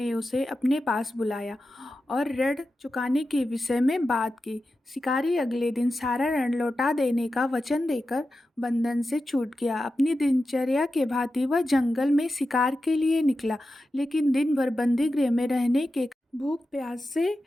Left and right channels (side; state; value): both; normal; correlation 0.92